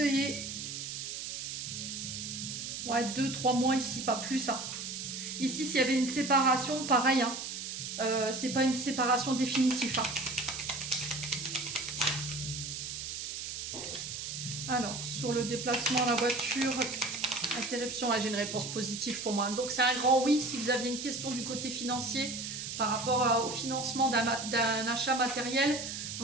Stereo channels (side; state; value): right; noise; hiss, 6 dB below the sound